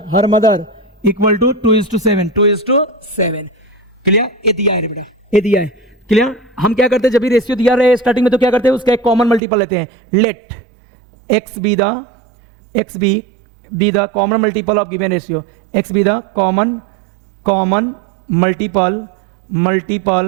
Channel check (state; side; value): drops out; left; at 9.4 s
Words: her mother equal to 2:7। Clear. ये दिया है रे बेटा, ये दिया है। क्लियर। हम क्या करते हैं, जब भी रेशियो दिया रहे स्टार्टिंग में, तो क्या करते हैं, उसका एक कॉमन मल्टीपल लेते हैं। Let x be the common multiple of given ratio, x be the common multiple